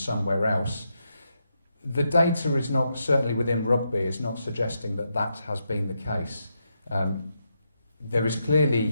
else. The data is not, certainly within Rugby, is not suggesting that that has been the case. There is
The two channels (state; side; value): inverted; both; correlation -0.83